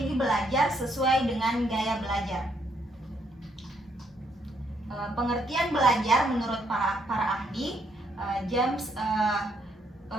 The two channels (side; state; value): both; normal; correlation 0.73